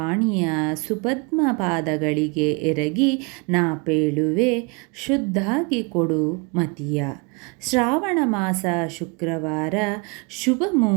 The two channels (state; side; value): quieter; left; 30.3 dB